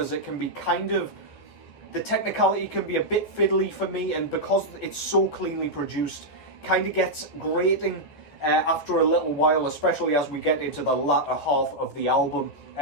it can be kind of, the technicality can be a bit fiddly for me, and because it's so cleanly produced, kind of gets grating after a little while, especially as we get into the latter half of the album.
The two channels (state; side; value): late; right; 14 ms